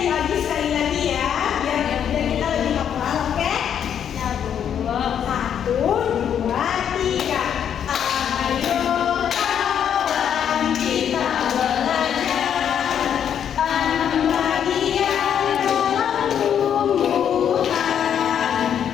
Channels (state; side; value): quieter; right; 8.8 dB